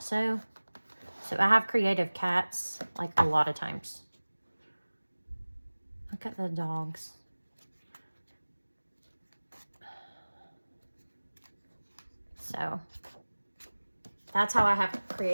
So I have creative cats like a lot of times. Look at the dogs. So that's how I have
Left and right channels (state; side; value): inverted; both; correlation -1.00